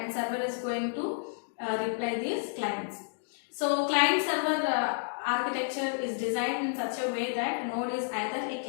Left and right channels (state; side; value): silent; right; digital silence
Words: server is going to reply these clients. So client server architecture is designed in such a way that node is either a